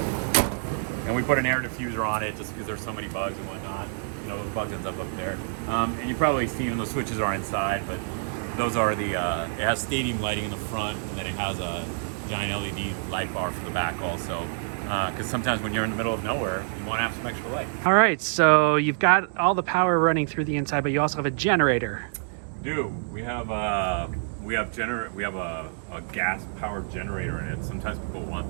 And we put an air diffuser on it just because there's so many bugs and whatnot. You know, those bugs end up there. And you probably see the switches are inside, but those are the, it has stadium lighting in the front, and then it has a giant LED light bar for the back also. Because sometimes when you're in the middle of nowhere, you want to have some extra light. All right, so you've got all the power running through the inside, but you also have a generator. We do. We have a gas-powered generator in it. Sometimes people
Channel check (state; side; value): silent; left; digital silence